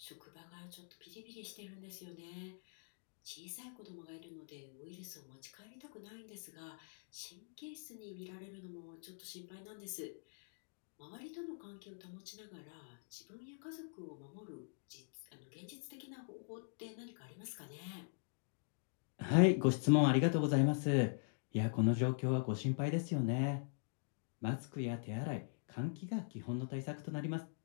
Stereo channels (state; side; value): silent; right; digital silence